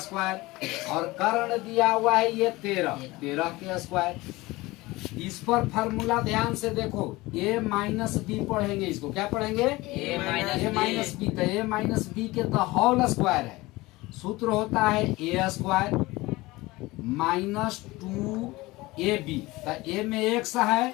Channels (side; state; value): right; quieter; 20.6 dB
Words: और कर्ण दिया हुआ है ये 13 के स्क्वायर। इस पर फार्मूला ध्यान से देखो, a-b पढ़ेंगे। इसको क्या पढ़ेंगे? a-b। तो a-b के द होल स्क्वायर है। सूत्र होता है a स्क्वायर माइनस 2ab। तो a में x